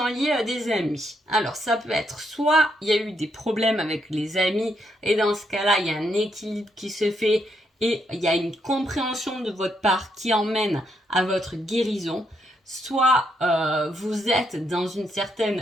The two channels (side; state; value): both; normal; correlation 0.77